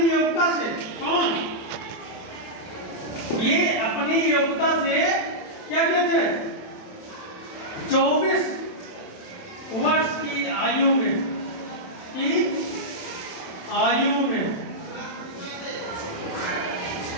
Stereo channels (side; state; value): right; late; 27 ms